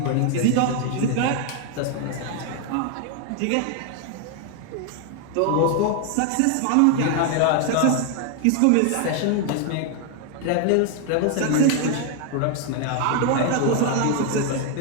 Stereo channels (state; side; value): different; both; correlation 0.00